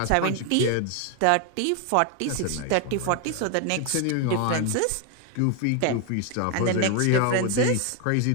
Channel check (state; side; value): different; both; correlation 0.01